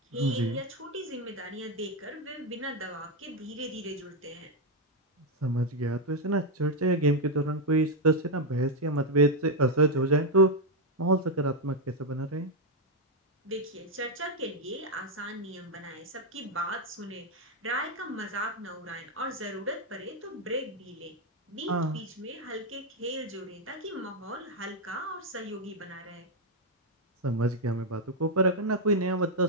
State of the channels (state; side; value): normal; both; correlation 0.02